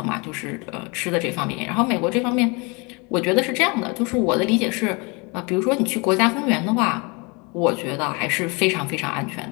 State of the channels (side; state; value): right; quieter; 29.4 dB